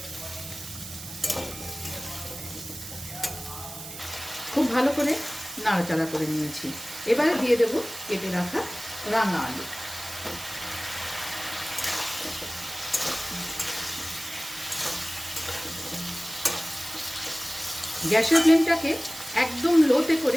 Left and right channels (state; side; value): noise; right; hiss, 11 dB below the sound